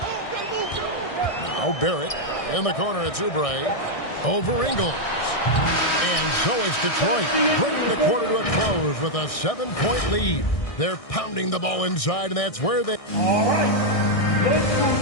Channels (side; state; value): right; late; 1.6 ms